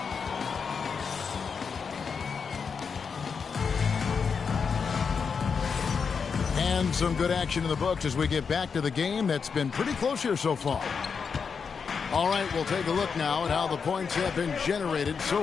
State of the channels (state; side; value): quieter; right; 5.9 dB